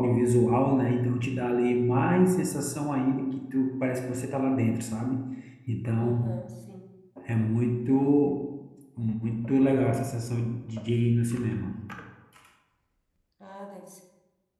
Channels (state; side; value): identical; both; correlation 1.00